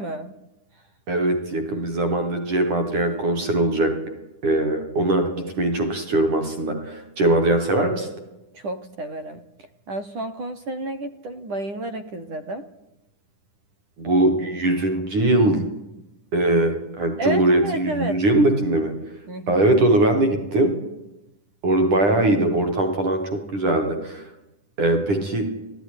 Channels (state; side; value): late; left; 10 ms